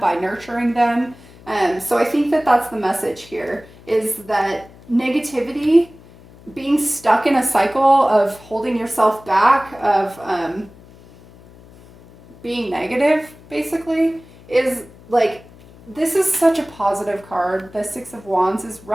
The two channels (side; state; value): left; noise; hum, 23 dB below the sound